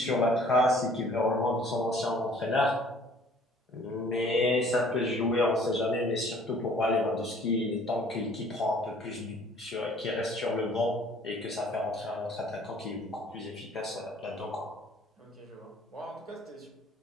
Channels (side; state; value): both; normal; correlation 0.55